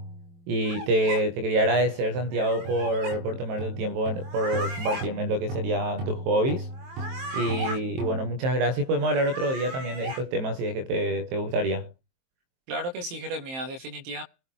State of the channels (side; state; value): left; late; 23 ms